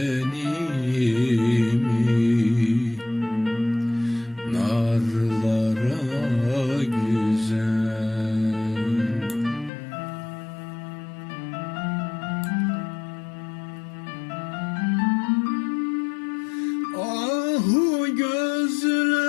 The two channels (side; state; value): right; drops out; at 9.7 s